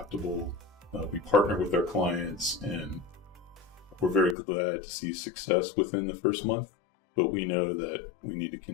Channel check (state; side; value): drops out; right; at 4.4 s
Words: We partner with our clients, and we're very glad to see success within the first month. But we know that we need to